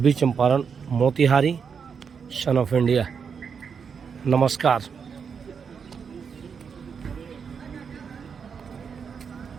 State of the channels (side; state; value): left; quieter; 6.4 dB